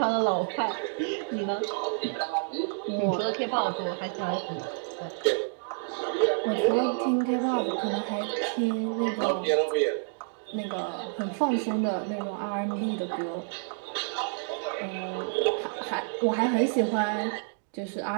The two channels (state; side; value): silent; left; digital silence